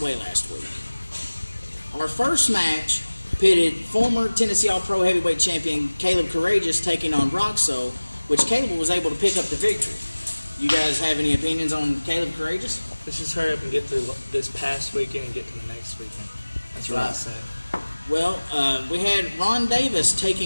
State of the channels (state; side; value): inverted; both; correlation -1.00